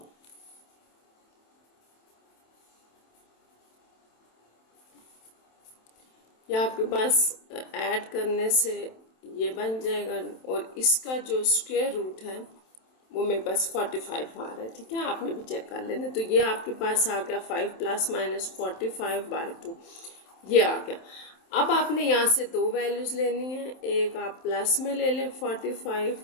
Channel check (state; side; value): late; right; 27 ms